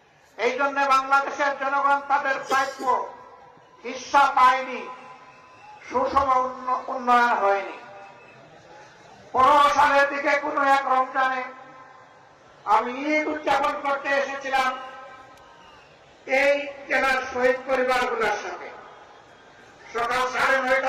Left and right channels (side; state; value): both; identical; correlation 1.00